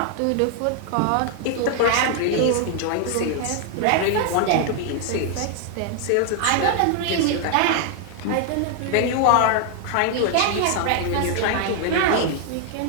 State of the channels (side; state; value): both; different; correlation 0.00